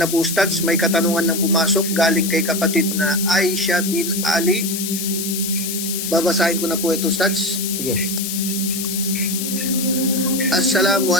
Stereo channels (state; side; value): noise; left; hiss, 4 dB below the sound